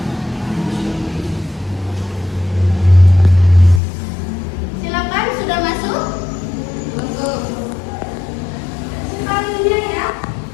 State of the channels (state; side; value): drops out; right; at 3.8 s